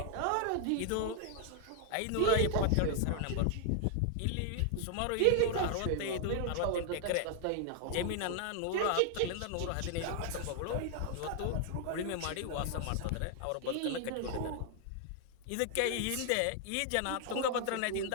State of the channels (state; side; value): different; both; correlation -0.01